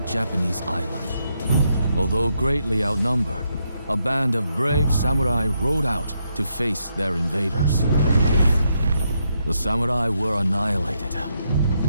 island. Although greatly outnumbered, a band of brave samurai rode out to face their invaders. The samurai were annihilated,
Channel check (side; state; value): both; inverted; correlation -0.79